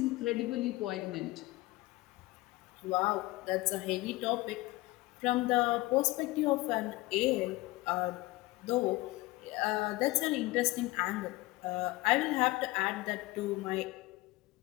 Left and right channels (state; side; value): quieter; right; 20.5 dB